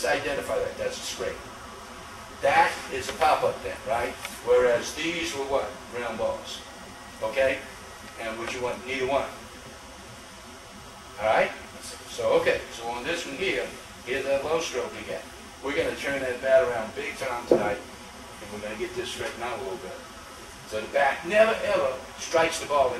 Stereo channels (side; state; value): both; identical; correlation 1.00